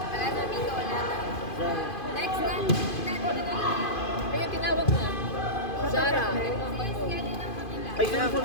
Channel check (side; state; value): right; late; 2.5 ms